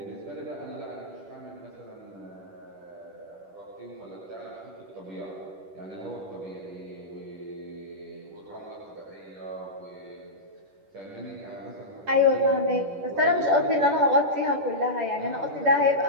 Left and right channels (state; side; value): late; left; 10 ms